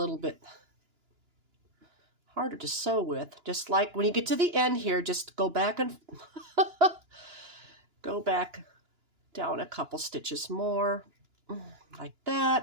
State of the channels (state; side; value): late; left; 2.9 ms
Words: bit harder to sew with. Just like when you get to the end here, just go back and go back down a couple stitches more, like